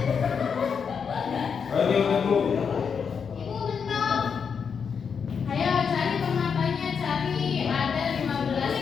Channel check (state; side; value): quieter; right; 6.4 dB